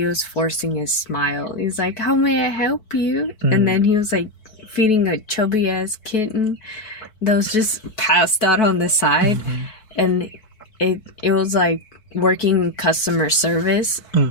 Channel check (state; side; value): late; right; 4.6 ms